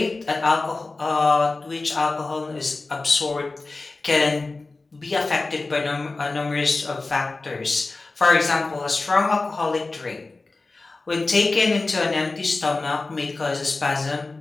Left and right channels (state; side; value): quieter; right; 3.5 dB